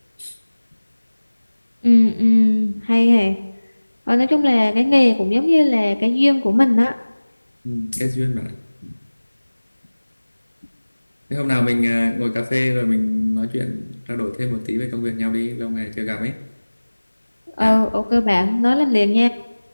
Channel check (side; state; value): both; inverted; correlation -1.00